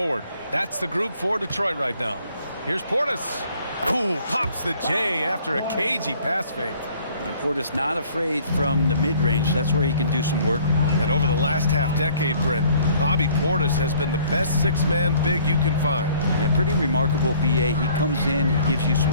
That's the group for Detroit right now. Here's Portis. Ooh, pops the J after a cagey pass fake. And Portis not afraid from the mid-range. That's where he can do some work. And over the last half-decade, Brent, Bobby Portis has been the best six-man big you can find. Yeah, pretty remarkable, B.A. He comes in, he gives you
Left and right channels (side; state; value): both; inverted; correlation -0.57